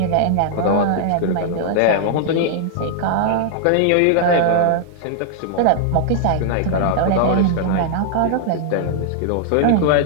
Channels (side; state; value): both; different; correlation -0.01